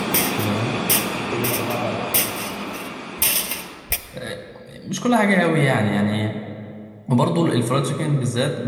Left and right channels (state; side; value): identical; both; correlation 1.00